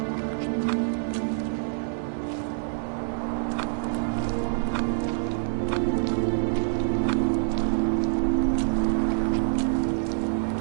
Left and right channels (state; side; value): silent; left; digital silence